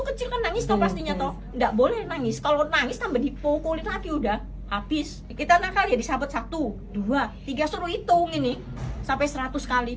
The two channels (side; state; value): both; identical; correlation 1.00